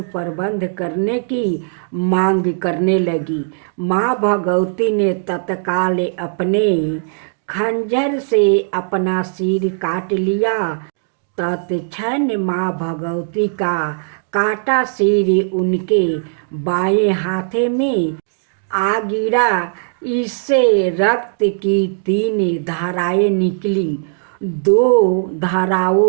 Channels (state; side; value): silent; left; digital silence